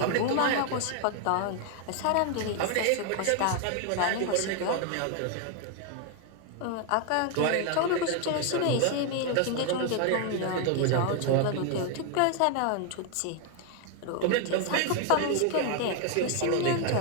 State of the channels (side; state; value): both; different; correlation 0.01